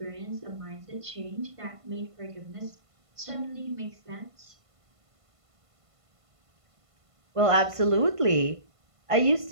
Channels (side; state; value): left; late; 1.5 ms